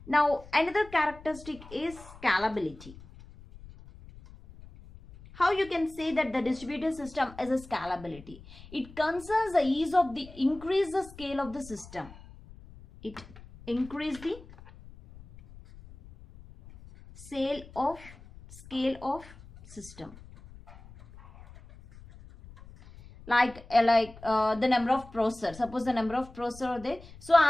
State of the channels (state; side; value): noise; left; rumble, 19 dB below the sound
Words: Now another characteristic is scalability. How you can say that the distributed system is a scalability? It concerns the ease of the increase the scale of the system. It increase the scale of system, like the number of processors. Suppose the number of processors are there, so